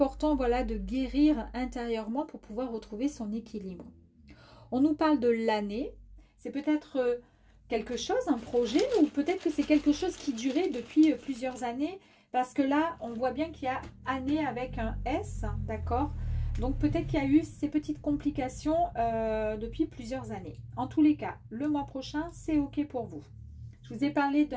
voilà, de guérir intérieurement pour pouvoir retrouver son équilibre. On nous parle de l'année. C'est peut-être quelque chose, un projet, ou peut-être que c'est quelque chose qui durait depuis plusieurs années. Parce que là, on voit bien qu'il y a année avec un S, d'accord? Donc peut-être qu'il y a eu ces petites complications depuis plusieurs années. En tous les cas, le mois prochain, c'est OK pour vous. Je vous ai parlé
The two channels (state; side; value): identical; both; correlation 1.00